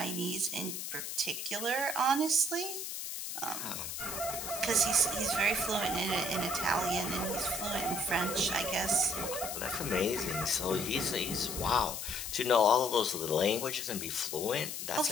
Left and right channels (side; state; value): left; noise; hiss, 5 dB below the sound